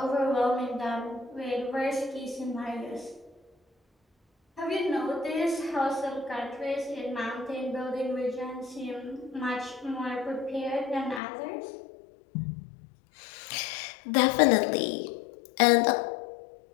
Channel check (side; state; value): right; drops out; at 11.2 s